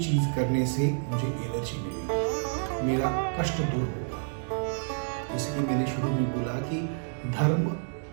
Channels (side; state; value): left; silent; digital silence